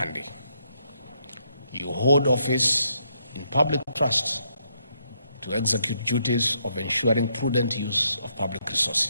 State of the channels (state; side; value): inverted; both; correlation -0.76